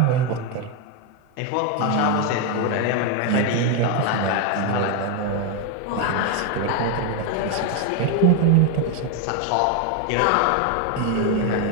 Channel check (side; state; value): both; different; correlation 0.02